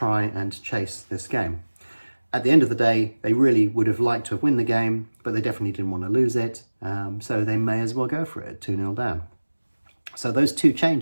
and chase this game. At the end of the day, they really would have liked to have won the game, but they definitely didn't want to lose it. So they may as well go for it, 2-0 down. So those 2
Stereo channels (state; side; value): inverted; both; correlation -1.00